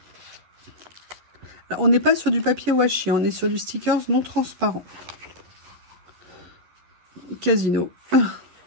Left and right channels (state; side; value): late; left; 11 ms